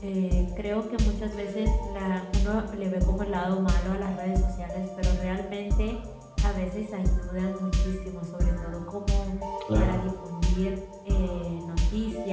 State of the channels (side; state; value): both; identical; correlation 1.00